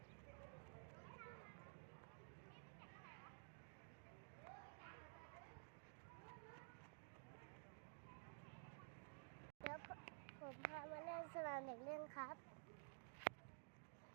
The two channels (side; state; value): left; silent; digital silence